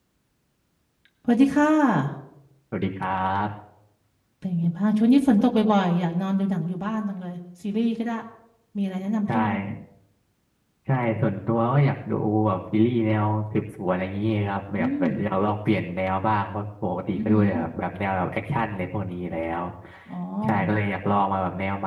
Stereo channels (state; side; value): identical; both; correlation 1.00